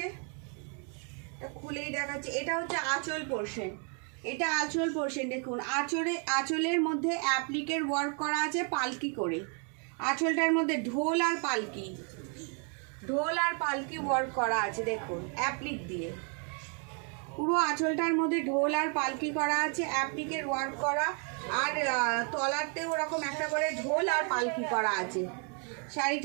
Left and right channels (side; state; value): left; quieter; 39.5 dB